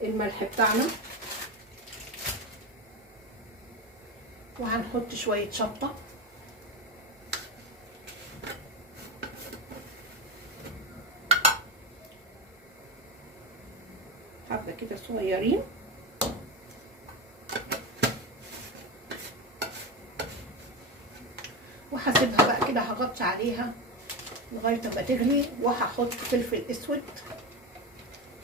الملح بتاعنا. وهنحط شويه شطه، حبه كده صغيرين، وهسيبها بقى كده، هغطي عليها لغايه ما تغلي. وهحط فلفل اسود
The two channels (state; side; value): normal; both; correlation 0.18